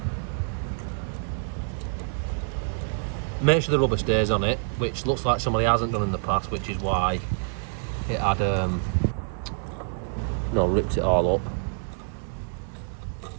Make sure the rubber stays on it, which looks like somebody hasn't done in the past, which is why it had ripped it all up.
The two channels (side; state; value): left; silent; digital silence